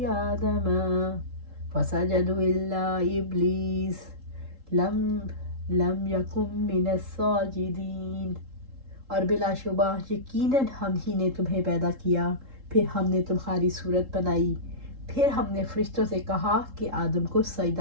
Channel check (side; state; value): left; late; 3.7 ms